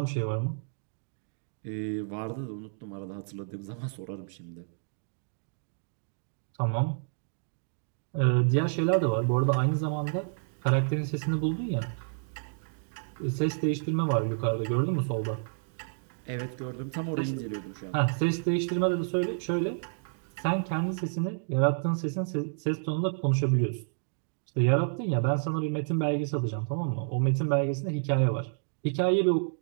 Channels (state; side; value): silent; left; digital silence